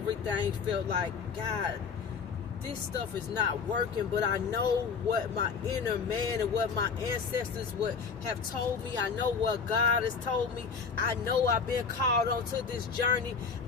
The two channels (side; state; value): right; quieter; 5.6 dB